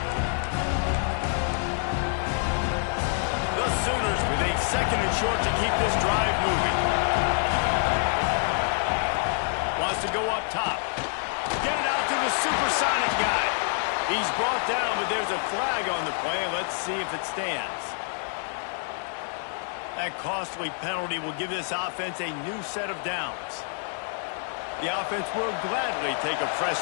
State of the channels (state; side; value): silent; right; 59 dB below the other